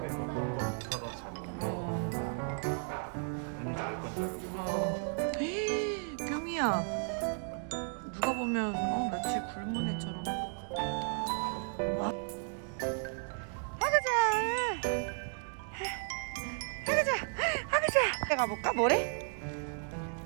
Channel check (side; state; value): left; silent; 55 dB below the other